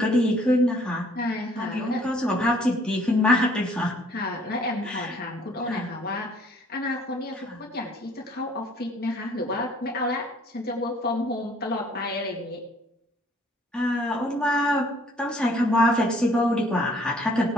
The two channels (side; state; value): both; normal; correlation 0.59